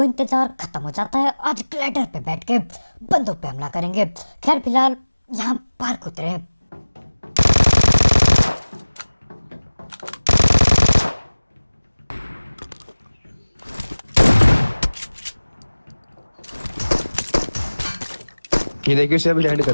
इंतजार खत्म हो जाता है। आज ग्लाइडर पे बैठ के बंदों पे हमला करेंगे। खैर फिलहाल यहाँ पार्क उतरे। ये देखिए उसे अभी लैंड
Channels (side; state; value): both; inverted; correlation -1.00